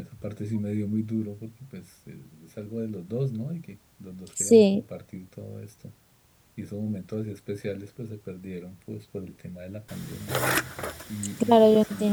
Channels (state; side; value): identical; both; correlation 1.00